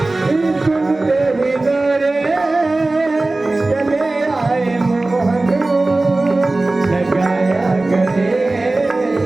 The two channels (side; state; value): left; quieter; 3.0 dB